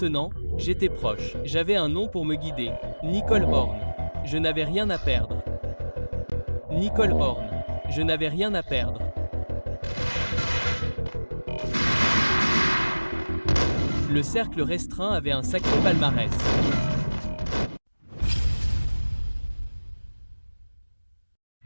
j'étais proche. J'avais un nom pour me guider. Nicole Horn. Je n'avais rien à perdre. Nicole Horn. Je n'avais rien à perdre. Le cercle restreint avait un sacré palmarès.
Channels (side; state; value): both; inverted; correlation -1.00